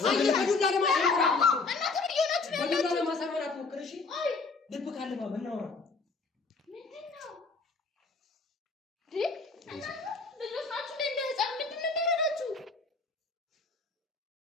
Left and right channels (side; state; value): right; quieter; 4.1 dB